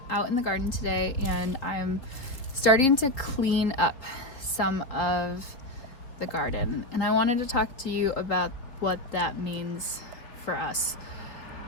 out in the garden today and I'm starting to clean up some of the garden, and I wanted to talk to you about what that means for us.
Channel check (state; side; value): late; right; 3.9 ms